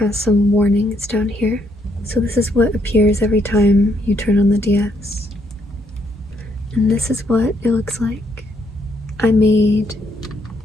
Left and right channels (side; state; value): both; normal; correlation 0.73